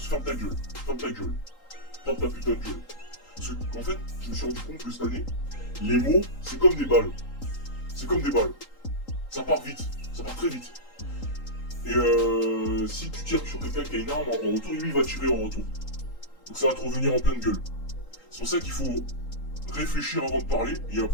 ferme ta gueule. Ferme ta gueule. Ferme ta putain de gueule. Parce qu'en fait, je me suis rendu compte que cette année, les mots, c'est comme des balles. C'est comme des balles. Ça part vite. Ça part très vite. Et si tu tires sur quelqu'un qui a une arme en retour, lui il va tirer en retour. Donc ça va te revenir en pleine gueule. C'est pour ça qu'il faut réfléchir avant de parler. Il y a un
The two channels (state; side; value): late; right; 3.8 ms